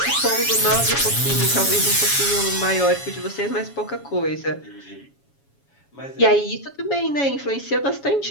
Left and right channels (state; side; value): late; right; 7.2 ms